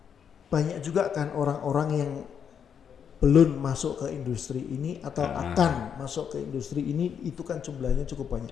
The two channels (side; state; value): right; quieter; 7.7 dB